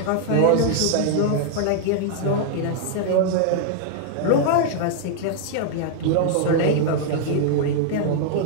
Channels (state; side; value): different; both; correlation 0.00